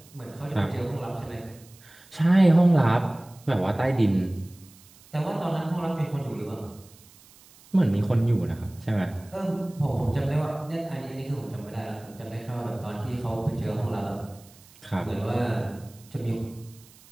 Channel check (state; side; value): noise; right; hiss, 25 dB below the sound